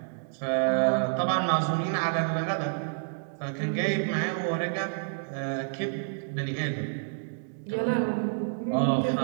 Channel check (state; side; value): silent; left; digital silence